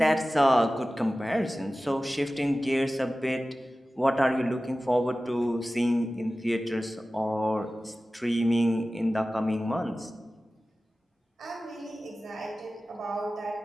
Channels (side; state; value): both; normal; correlation 0.96